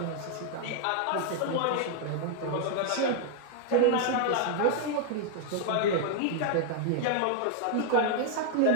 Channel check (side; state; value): both; different; correlation 0.00